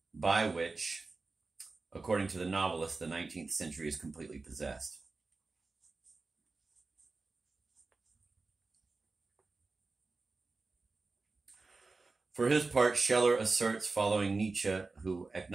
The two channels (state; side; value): quieter; left; 3.8 dB